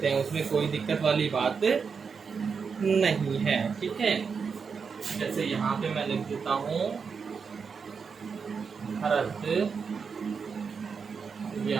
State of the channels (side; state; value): left; quieter; 5.7 dB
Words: हैं, उसमें कोई दिक्कत वाली बात नहीं है, ठीक है। जैसे यहाँ पे मैं लिख देता हूँ भरत